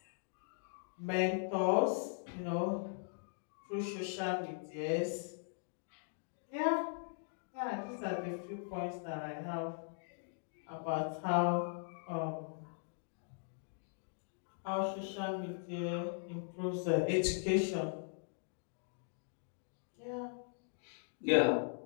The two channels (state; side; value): silent; right; digital silence